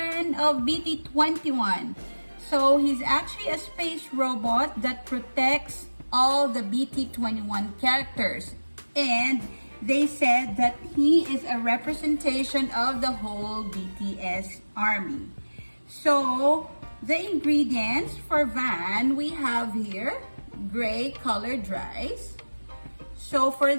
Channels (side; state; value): both; inverted; correlation -1.00